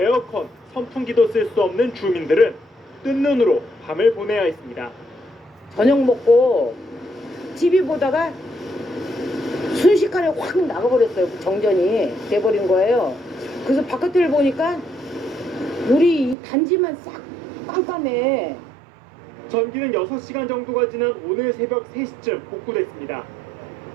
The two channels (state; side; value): drops out; left; at 16.4 s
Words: 선풍기도 쓸 수 없는 주민들은 뜬 눈으로 밤을 보내야 했습니다. 저녁 먹고 TV 보다가 순식간에 확 나가버렸어요. 정전이 돼버린 거예요. 그래서 바깥을 보니까 우리 이 단지만 싹 깜깜해. 전기는 6시간 정도가 지난 오늘 새벽 3시쯤 복구됐습니다.